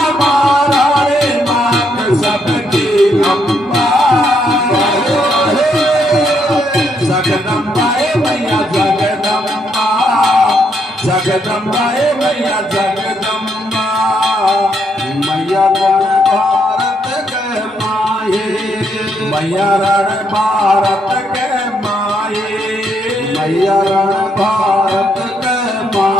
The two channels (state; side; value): normal; both; correlation 0.75